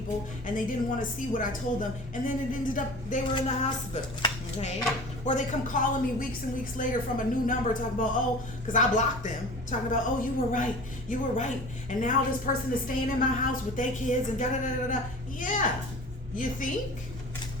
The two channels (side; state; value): both; normal; correlation 0.39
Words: and they didn't want to see what I told them, and then it ended up they were in the hospital. Okay? Or they come calling me weeks and weeks later from a new number talking about, because I blocked them, talking about, oh, you were right, and now this person is staying in my house with their kids and da-da-da-da-da. Yeah. You think?